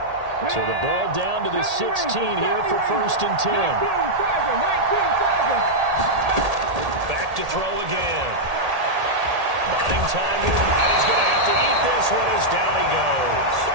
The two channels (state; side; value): late; left; 1.8 ms